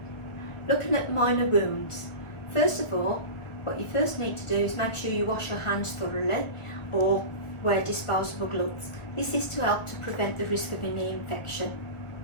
Looking at minor wounds. First of all, what you first need to do is make sure you wash your hands thoroughly or wear disposable gloves. This is to help to prevent the risk of any infection.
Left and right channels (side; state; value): right; late; 1.4 ms